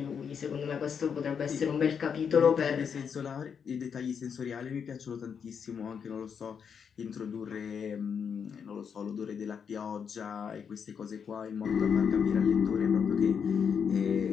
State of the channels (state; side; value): quieter; right; 6.9 dB